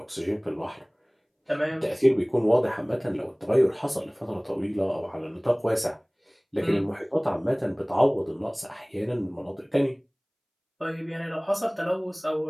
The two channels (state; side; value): identical; both; correlation 1.00